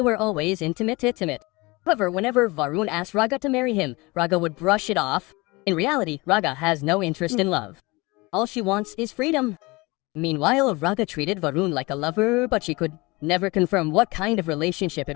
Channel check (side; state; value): right; quieter; 24.1 dB